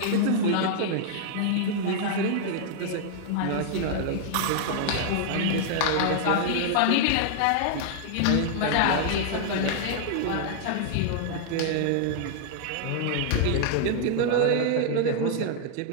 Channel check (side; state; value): both; different; correlation -0.01